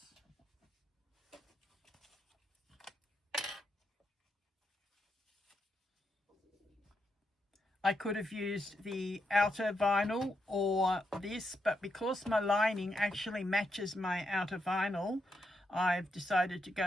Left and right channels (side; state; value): both; normal; correlation 0.82